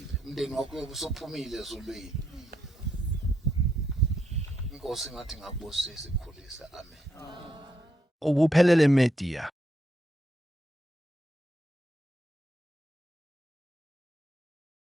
umndeni wakho uyobusuphumile ezulwini inkosi ngathi ngakubusisa ikhulisa amen Ubuphelele Media.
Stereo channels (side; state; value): both; normal; correlation 0.79